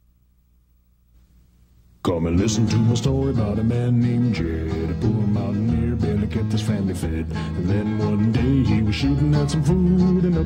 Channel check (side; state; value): both; identical; correlation 1.00